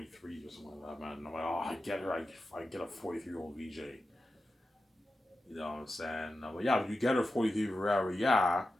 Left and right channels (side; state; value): both; normal; correlation 0.91